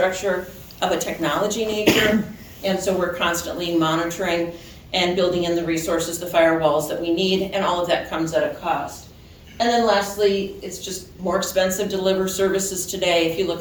of a technology nature. And so we're constantly monitoring and building in the resources, the firewalls that we need, and all of that comes at a cost. And then lastly, it's just more expensive to deliver services today. If you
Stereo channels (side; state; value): both; identical; correlation 1.00